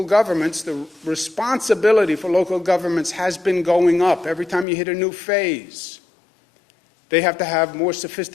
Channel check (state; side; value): drops out; right; at 4.7 s